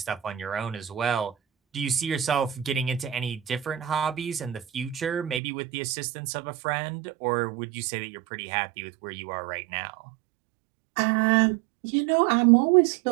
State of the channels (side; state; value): left; drops out; at 5.4 s